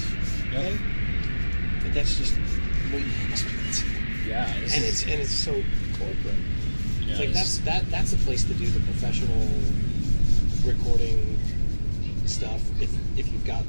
thing. But that's just what you expect. Yeah, And it's so corporate. Yeah, it's like that's the place to do the professional recording stuff if you've got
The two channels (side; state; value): both; inverted; correlation -1.00